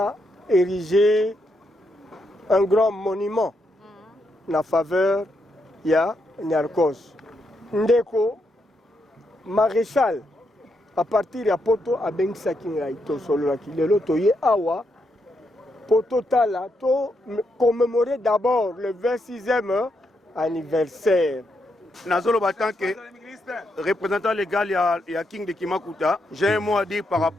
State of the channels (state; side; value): normal; both; correlation 0.80